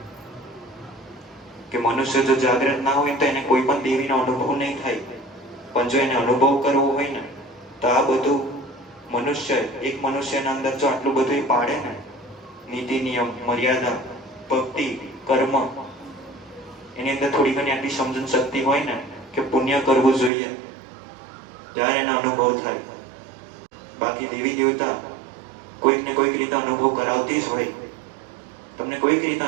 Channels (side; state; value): left; drops out; at 20.3 s